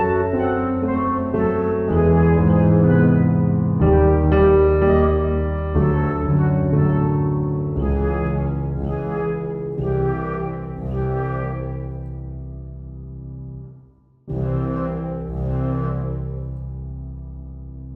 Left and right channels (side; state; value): both; identical; correlation 1.00